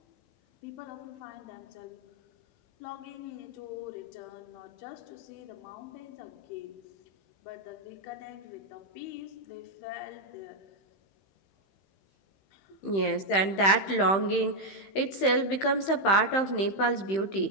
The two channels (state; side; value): late; right; 15 ms